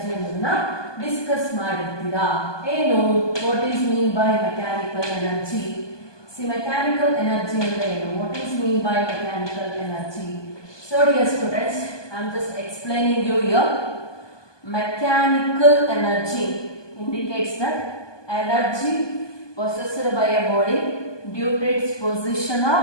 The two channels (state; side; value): late; right; 1.2 ms